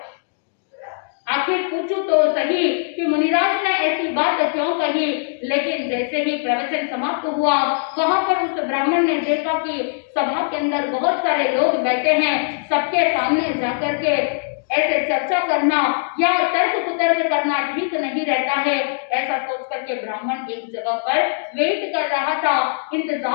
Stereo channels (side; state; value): right; silent; digital silence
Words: आखिर पूछूं तो सही कि मुनिराज ने ऐसी बात क्यों कही। लेकिन जैसे ही प्रवचन समाप्त हुआ, वहां पर उस ब्राह्मण ने देखा कि सभा के अंदर बहुत सारे लोग बैठे हैं। सबके सामने जाकर के ऐसे चर्चा करना या तर्क कुतर्क करना ठीक नहीं रहता है। ऐसा सोच करके ब्राह्मण एक जगह पर वेट कर रहा था,